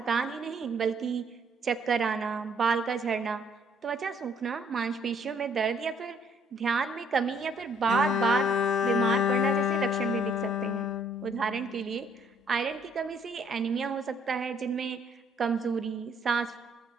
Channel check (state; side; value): normal; both; correlation 0.65